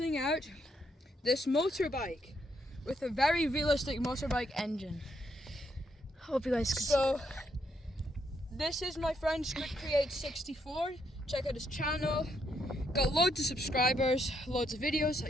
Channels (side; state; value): both; normal; correlation 0.76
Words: out this motorbike with a very realistic motorbike engine. Hope you guys can So this is my friend Squid Create 64. Check out his channel. Got loads of subscribers, loads of videos